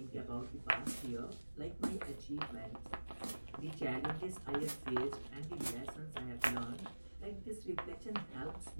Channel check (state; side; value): inverted; both; correlation -1.00